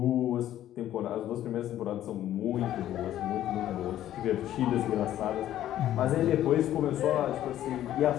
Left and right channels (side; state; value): right; quieter; 12.4 dB